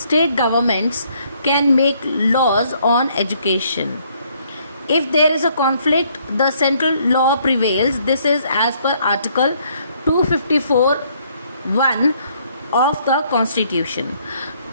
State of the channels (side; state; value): both; inverted; correlation -0.66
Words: state governments can make laws on education. If there is a conflict, the central law prevails. This is as per Article 254(1) of the Constitution.